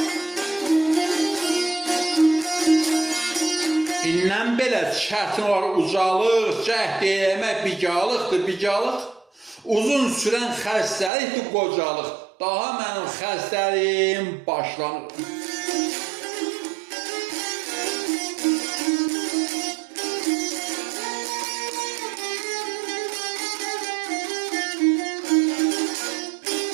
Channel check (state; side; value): drops out; left; at 11.1 s